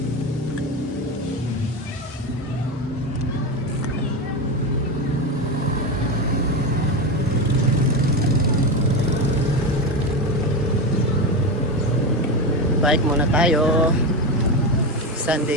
Bike muna tayo.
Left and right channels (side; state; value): both; normal; correlation 0.16